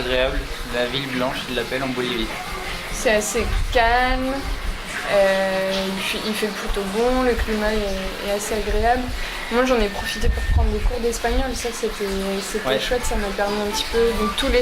la ville blanche ils l'appellent en Bolivie. C'est assez calme. Il fait plutôt bon, le climat est assez agréable. Moi j'en ai profité pour prendre des cours d'espagnol, ça c'était chouette, ça m'a permis un petit peu. Donc tous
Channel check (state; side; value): identical; both; correlation 1.00